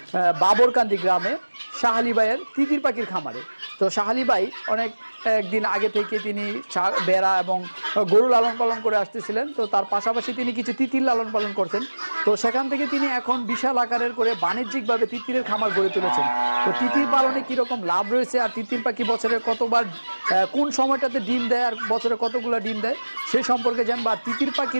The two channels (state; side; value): inverted; both; correlation -1.00